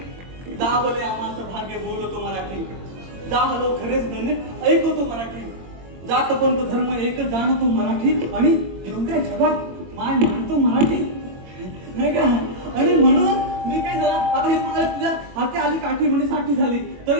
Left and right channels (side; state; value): left; late; 22 ms